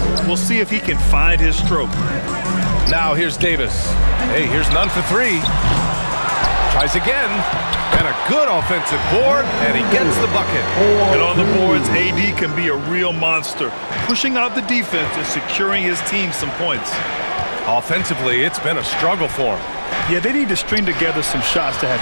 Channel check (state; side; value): inverted; both; correlation -1.00